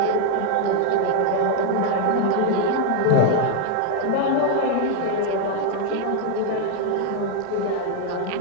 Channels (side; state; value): both; different; correlation 0.00